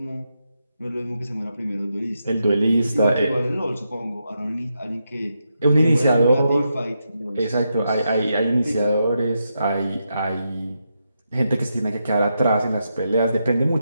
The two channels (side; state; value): both; inverted; correlation -0.84